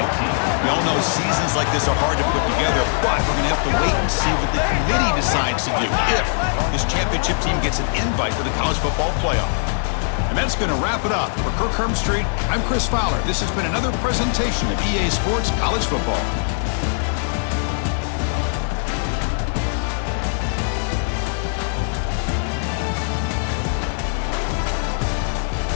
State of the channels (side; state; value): right; silent; digital silence